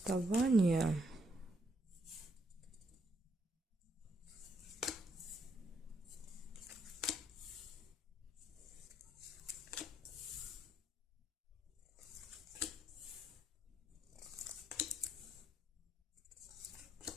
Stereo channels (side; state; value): both; normal; correlation 0.75